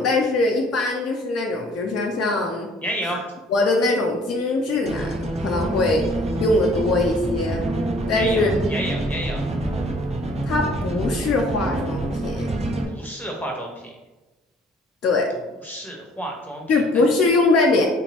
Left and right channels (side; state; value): both; normal; correlation 0.55